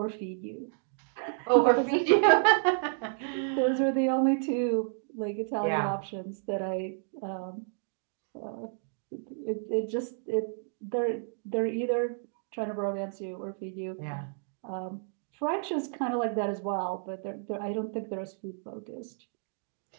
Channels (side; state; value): left; silent; digital silence